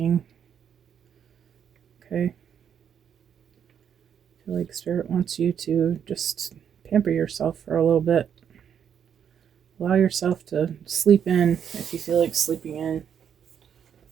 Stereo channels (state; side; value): quieter; left; 8.3 dB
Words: Okay. I feel like Spirit wants you to just pamper yourself for a little bit. Allow yourself to sleep in if you feel like sleeping in.